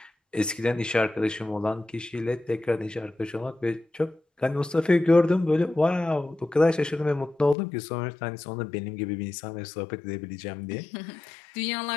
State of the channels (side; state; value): right; drops out; at 7.6 s